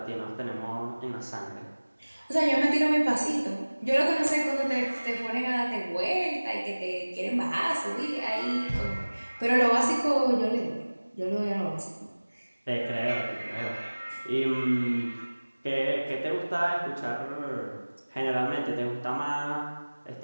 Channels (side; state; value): both; inverted; correlation -1.00